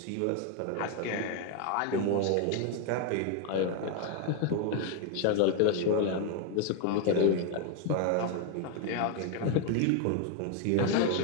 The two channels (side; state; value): both; different; correlation 0.01